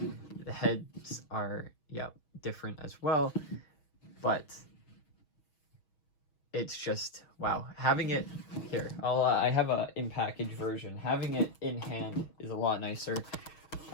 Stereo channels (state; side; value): late; right; 6.3 ms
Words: The heads are, yeah, different as well, but it's just, wow. Having it here, I have a in-package version. Having it in hand is a lot nicer,